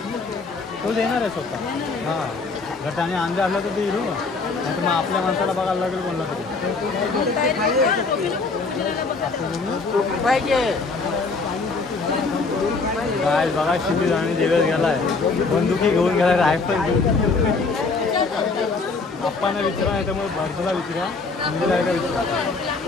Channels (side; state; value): right; quieter; 4.1 dB